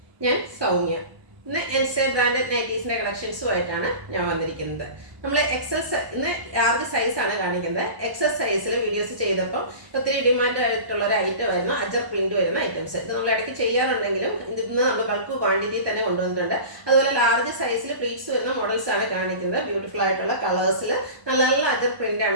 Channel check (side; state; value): left; late; 1.2 ms